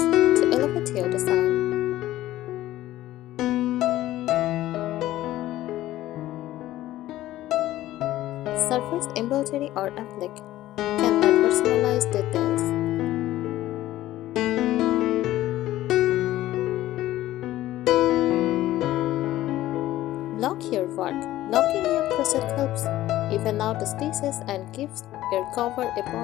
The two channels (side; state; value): right; quieter; 14.9 dB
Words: to elevate your design. Surface embroidery or applique can add personalized details. Lock your work. Locking your crochet helps even out the stitches and gives your cover a